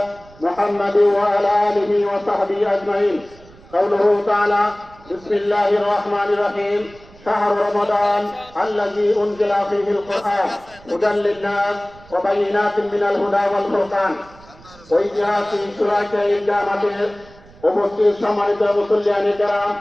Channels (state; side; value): noise; right; rumble, 23 dB below the sound